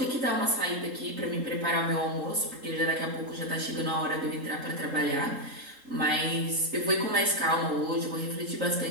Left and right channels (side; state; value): left; late; 3.8 ms